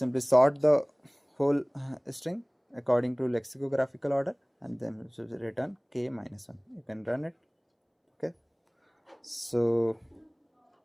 sort the whole string according to lexicographical order, and then it will return k minus 1. You can run it. Okay, so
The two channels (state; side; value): identical; both; correlation 1.00